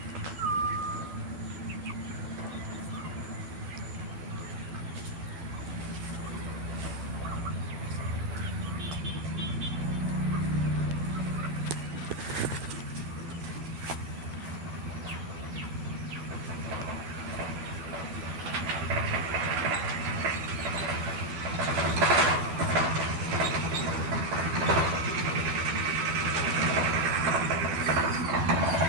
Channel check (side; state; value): left; late; 12 ms